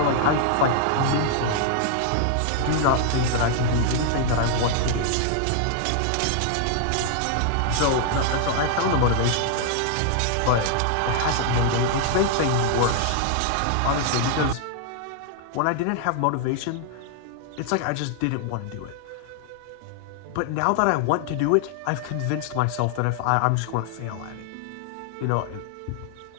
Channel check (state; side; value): different; both; correlation 0.00